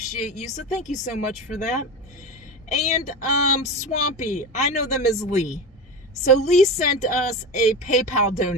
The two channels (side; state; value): both; normal; correlation 0.24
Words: you, so thank you so much for that. And Swampy, I know them as Lee. So Lee sent us a PayPal